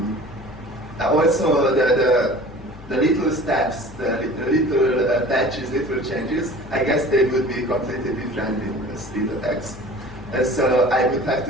also the little steps, the little patches, little changes, I guess they would be completely different in S3.x. So I would have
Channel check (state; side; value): noise; left; hum, 18 dB below the sound